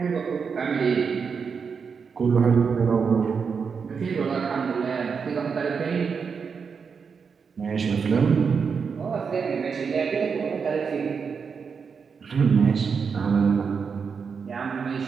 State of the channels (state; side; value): quieter; left; 5.9 dB